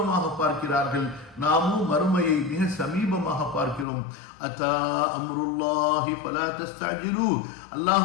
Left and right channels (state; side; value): drops out; right; at 3.9 s